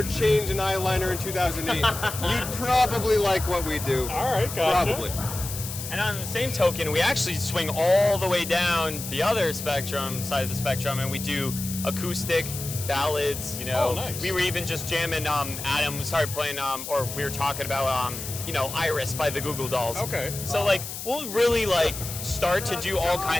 chains and eyeliner in 2008, you'd probably like what we do. All right, gotcha. Probably. And on the same token, we actually swing all the way down the other side of the spectrum, and we do acoustic, ballads, Oh, nice. We were even just jamming, Adam started playing, or we were talking about, Iris by the Goo Goo Dolls. Okay. So, like, we'll really, like, start to do all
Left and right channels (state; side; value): noise; left; hiss, 8 dB below the sound